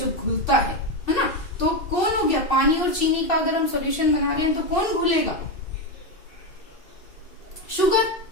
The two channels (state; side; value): late; right; 2.7 ms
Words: घुलता है ना. तो कौन हो गया? पानी और चीनी का अगर हम सॉल्यूशन बना रहे हैं तो कौन घुलेगा? शुगर.